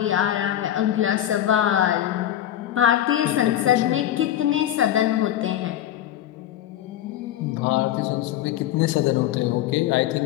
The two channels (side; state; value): right; quieter; 12.1 dB